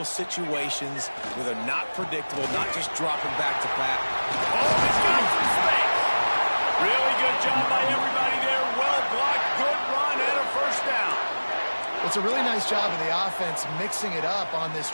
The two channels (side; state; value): both; inverted; correlation -1.00